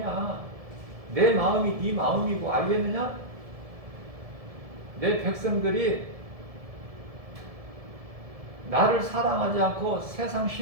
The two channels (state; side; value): late; left; 1.7 ms